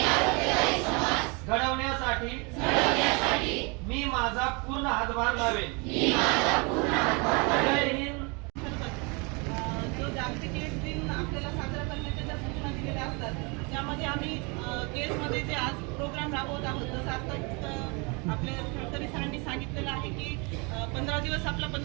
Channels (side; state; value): left; quieter; 30.7 dB